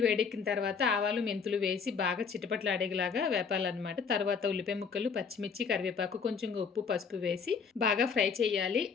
వేడెక్కిన తర్వాత ఆవాలు, మెంతులు వేసి బాగా చిటపటలాడేలాగా వేపాలన్నమాట. తర్వాత ఉల్లిపాయ ముక్కలు, పచ్చిమిర్చి, కరివేపాకు, కొంచెం ఉప్పు, పసుపు వేసి బాగా ఫ్రై చేయాలి.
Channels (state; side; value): quieter; right; 5.9 dB